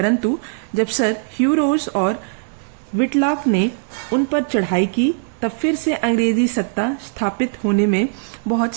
जब सर ह्यूरोज और विटलॉक ने उन पर चढ़ाई की, तब फिर से अंग्रेजी सत्ता स्थापित होने में बहुत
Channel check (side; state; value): left; silent; digital silence